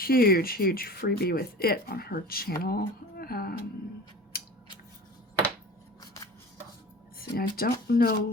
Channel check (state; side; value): normal; both; correlation 0.39